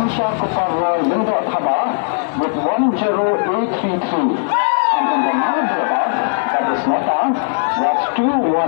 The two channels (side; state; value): right; silent; 68 dB below the other